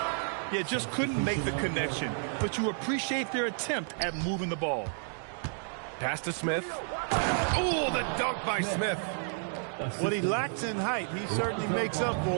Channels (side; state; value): left; silent; 57 dB below the other